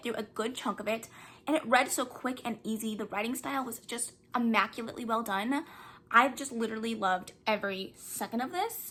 through a good chunk of it, and it read so quick and easy. The writing style was just immaculately well done. I've just literally loved every second of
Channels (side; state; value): both; identical; correlation 1.00